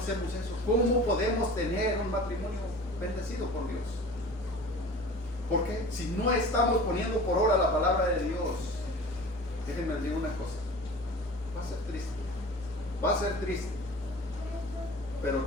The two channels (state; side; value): normal; both; correlation 0.40